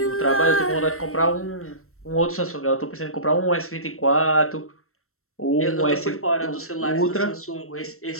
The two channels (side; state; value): right; late; 0.63 ms